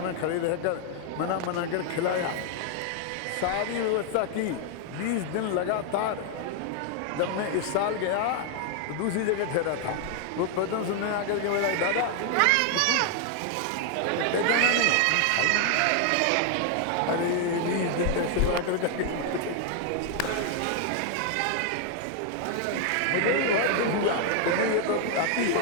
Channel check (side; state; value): both; different; correlation 0.00